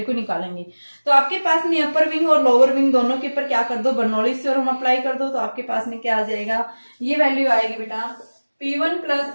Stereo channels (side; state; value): both; inverted; correlation -1.00